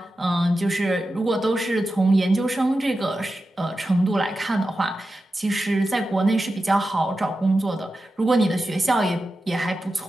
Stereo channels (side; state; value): both; normal; correlation 0.92